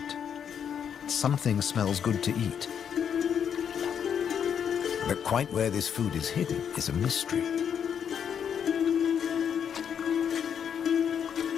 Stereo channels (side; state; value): right; quieter; 8.0 dB